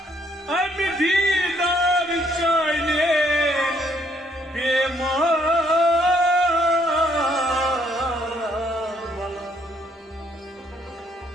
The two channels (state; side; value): normal; both; correlation 0.68